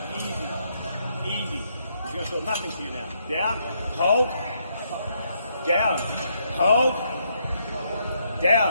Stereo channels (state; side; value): inverted; both; correlation -0.75